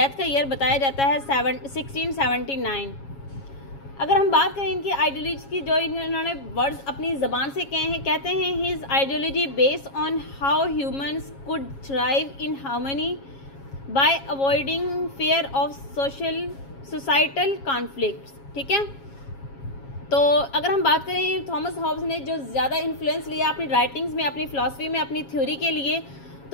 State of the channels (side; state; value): right; late; 7.3 ms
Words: का ईयर बताया जाता है 1679। अगर हम बात करें इनकी आइडियोलॉजी की, जो इन्होंने वर्ड्स अपनी ज़बान से कहे हैं, कहते हैं his ideology based on how humans could thrive in harmony bye avoiding fear of societal conflicts. ठीक है, तो अगर हम बात करें थॉमस हॉब्स ने जो ज़्यादा इन्फ्लुएंस लिया अपनी राइटिंग्स में, अपनी फिलॉसफी में, अपनी थ्योरी के लिए,